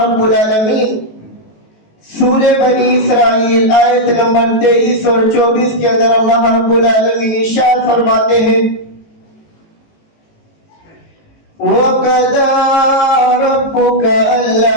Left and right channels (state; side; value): late; right; 18 ms